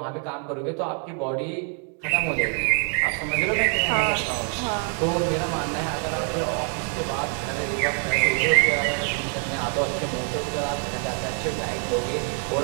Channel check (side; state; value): left; quieter; 38.8 dB